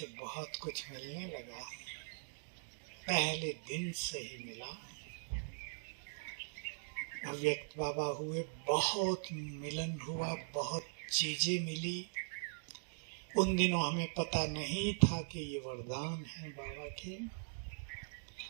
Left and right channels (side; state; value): left; silent; digital silence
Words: बहुत कुछ मिलने लगा, पहले दिन से ही मिला। अव्यक्त बाबा हुए, बहुत मिलन हुआ, बहुत चीजें मिली। उन दिनों हमें पता नहीं था कि ये वरदान है बाबा के।